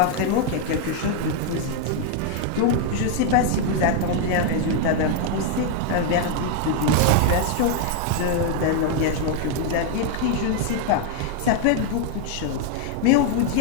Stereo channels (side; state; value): both; different; correlation 0.00